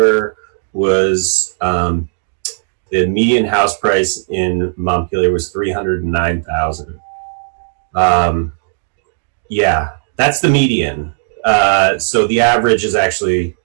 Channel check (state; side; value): silent; left; digital silence